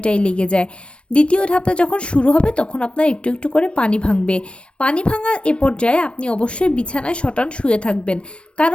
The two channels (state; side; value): late; right; 0.059 ms